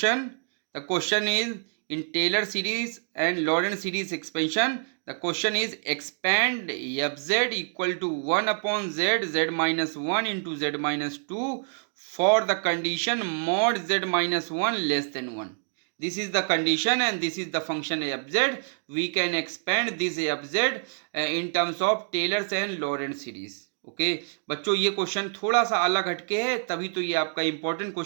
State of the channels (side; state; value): left; silent; digital silence